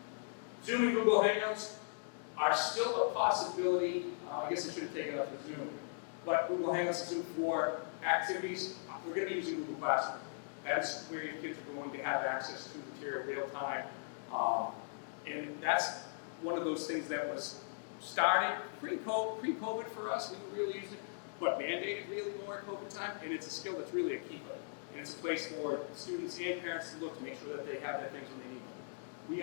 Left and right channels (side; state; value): right; silent; digital silence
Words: Zoom and Google Hangouts are still a possibility. I guess I should have taken up with Zoom. But Google Hangouts and Zoom for activities, we're going to be using Google Classroom. That's where your kids are going to have access to material real time. And that's one of those things that was started pre-COVID for us. We were really using it, but mandated really more at COVID time. And it's a skill that's really a keeper. And it's a place for students and parents to look to make sure that they have the things when they need them. We